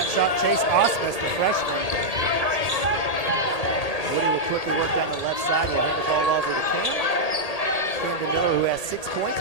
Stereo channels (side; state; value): right; late; 1.8 ms